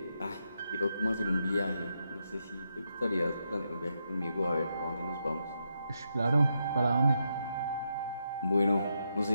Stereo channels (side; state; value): both; inverted; correlation -0.82